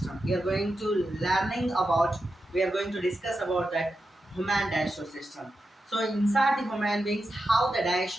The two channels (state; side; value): normal; both; correlation 0.89